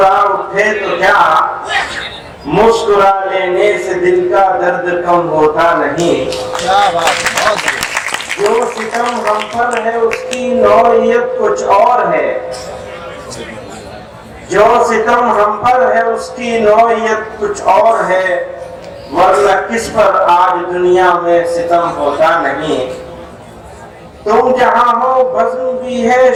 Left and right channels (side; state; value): both; identical; correlation 1.00